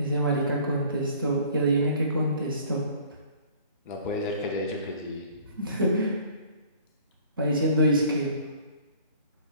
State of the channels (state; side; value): inverted; both; correlation -0.52